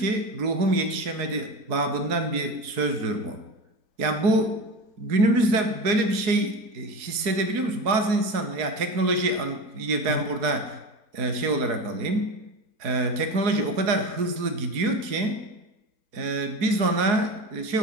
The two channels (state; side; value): late; left; 4.7 ms